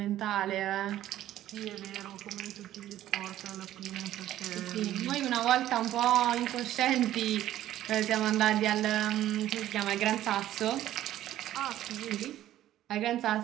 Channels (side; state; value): left; quieter; 13.1 dB